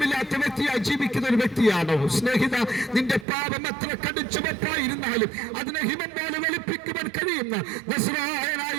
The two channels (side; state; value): left; drops out; at 3.2 s